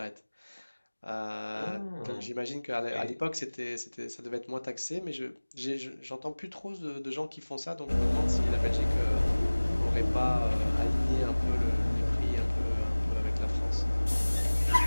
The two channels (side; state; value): both; inverted; correlation -1.00